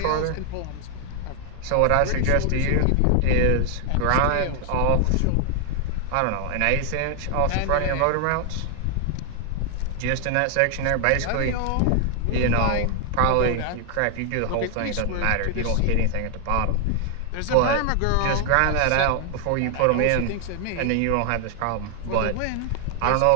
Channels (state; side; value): different; both; correlation 0.00